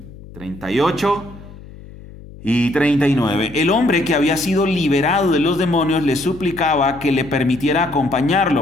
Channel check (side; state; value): left; noise; hum, 18 dB below the sound